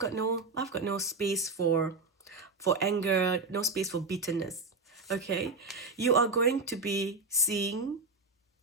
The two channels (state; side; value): quieter; left; 3.8 dB